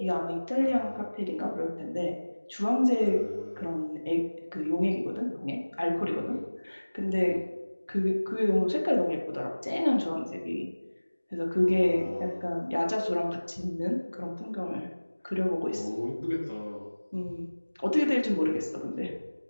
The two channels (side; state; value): both; inverted; correlation -1.00